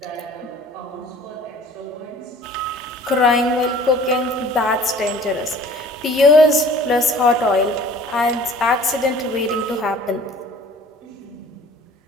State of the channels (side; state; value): both; normal; correlation 0.49